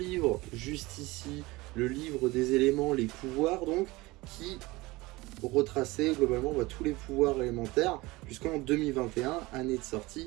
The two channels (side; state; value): left; quieter; 21.4 dB